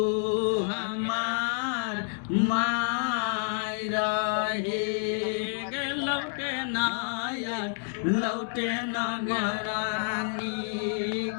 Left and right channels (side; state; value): right; silent; 59 dB below the other